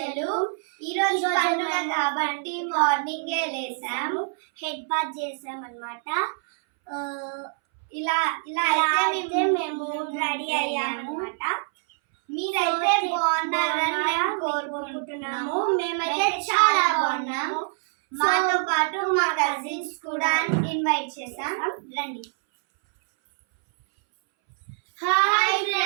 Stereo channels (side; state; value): left; silent; 62 dB below the other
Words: ఈ రోజు పండుగ కాబట్టి మార్నింగే లేసాము, హెడ్ బాత్ చేసాం అన్నమాట. ఇలా అయితే మేము రెడీ అయ్యాము అన్నమాట. మీరైతే బాగున్నారని మేము కోరుకుంటున్నాము. మేమైతే చాలా బాగున్నాము. మాతో పాటు మా కజిన్స్ కూడా ఇన్వైట్ చేసాం, రండి. హాయ్